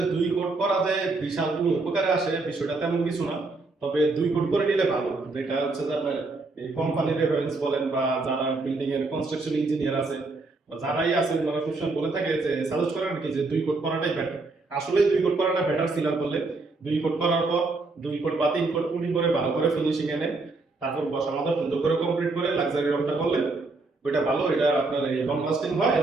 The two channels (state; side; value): quieter; left; 3.5 dB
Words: 2 কোট করা যে বিশাল কোনো উপকারে আসে বিষয়টা তেমন কিছু না। তবে 2 কোট করে নিলে ভালো। যেটা হচ্ছে যে আপনার এই কোম্পানির রেফারেন্স বলেন বা যারা বিল্ডিং এর কনস্ট্রাকশন ইঞ্জিনিয়ার আছে বা যারাই আছে তারা সবসময় বলে থাকে যে সাজেস্ট করেন কি যে 2 কোট করাটাই বেটার। আসলে 2 কোট করাটা বেটার সিলার করলে। 2 কোট করার পর 2 কোট বা 3 কোট পুরি করে ভালো করে ফিনিশিং এনে তারপর বসা মাথা সুন্দর করে কমপ্লিট করে লাক্সারি রংটা করলে ওইটা ভালো। এটা আপনার এই লং লাস্টিং হয়